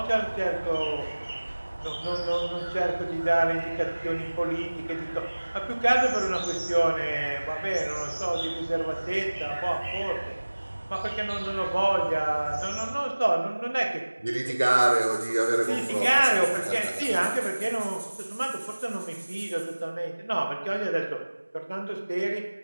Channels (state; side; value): inverted; both; correlation -1.00